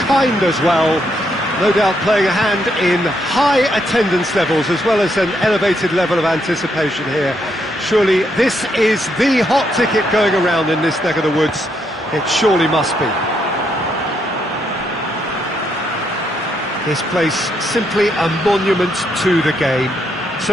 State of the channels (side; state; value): both; normal; correlation 0.77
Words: as well. No doubt playing a hand in high attendance levels as well as an elevated level of anticipation here. Surely this is the hot ticket going around in this neck of the woods. It surely must be. This place simply a monument to the game.